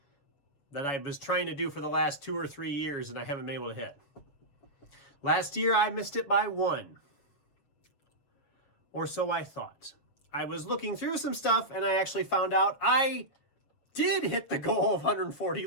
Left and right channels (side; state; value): right; late; 7.2 ms